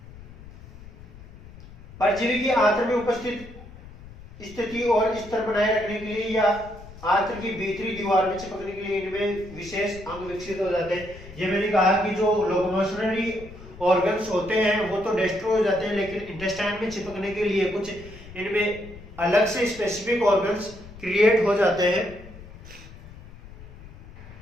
परजीवी की आंत्र में उपस्थित स्थिति और स्तर बनाए रखने के लिए या आंत्र की भीतरी दीवार में चिपकने के लिए इनमें विशेष अंग विकसित हो जाते हैं। ये मैंने कहा कि जो लोकोमोशनरी ऑर्गन्स होते हैं वो तो डिस्ट्रॉय हो जाते हैं, लेकिन इंटेस्टाइन में चिपकने के लिए कुछ इनमें अलग से स्पेसिफिक ऑर्गन्स क्रिएट हो जाते हैं।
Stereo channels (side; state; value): left; noise; rumble, 18 dB below the sound